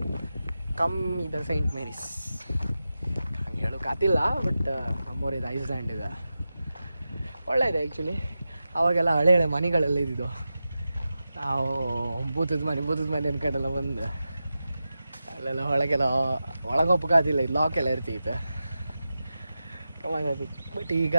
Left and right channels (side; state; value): both; inverted; correlation -0.92